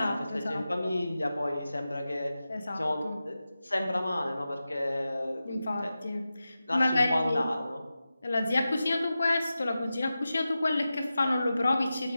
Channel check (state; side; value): inverted; both; correlation -0.93